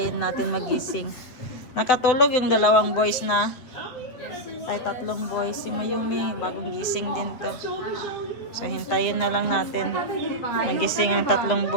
natin magising. Nakatulog yung dalawang boys na. Ay, tatlong boys. Si Mayumi, bagong gising din to. So, hintayin na lang natin. Magising ang tatlong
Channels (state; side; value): late; right; 8.1 ms